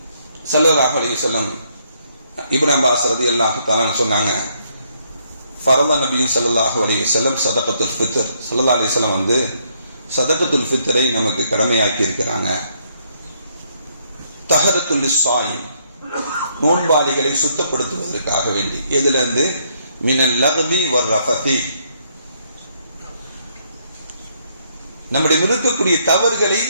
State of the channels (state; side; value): inverted; both; correlation -0.71